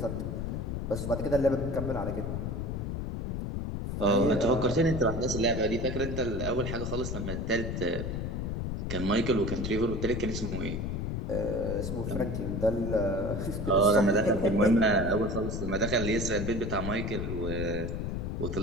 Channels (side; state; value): left; noise; rumble, 3 dB below the sound